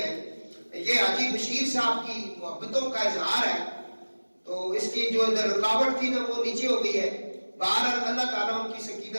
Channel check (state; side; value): inverted; both; correlation -1.00